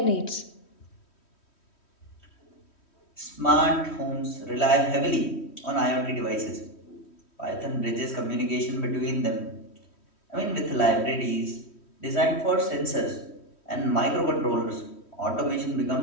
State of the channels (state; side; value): late; right; 3.1 ms